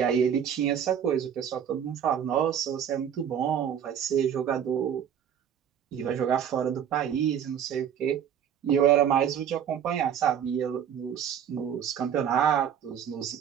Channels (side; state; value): left; quieter; 8.8 dB